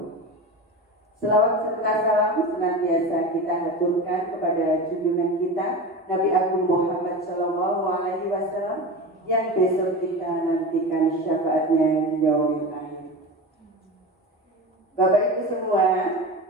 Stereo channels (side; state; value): both; normal; correlation 0.27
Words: Selawat serta salam senantiasa kita haturkan kepada junjungan kita Nabi Agung Muhammad SAW, yang besok kita nantikan syafaatnya di yaumil akhir. Bapak Ibu semua,